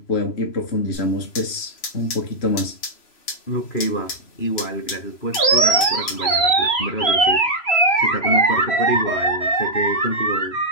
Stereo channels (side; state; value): right; late; 3.0 ms